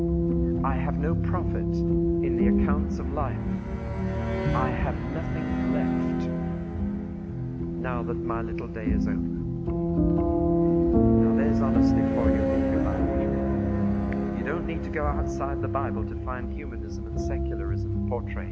I have no profit in the accounts of life. I have nothing left now that my little day is over. Now there's honesty for you if you like. You don't need to go outside the Bible to find humanism and secularism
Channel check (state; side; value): identical; both; correlation 1.00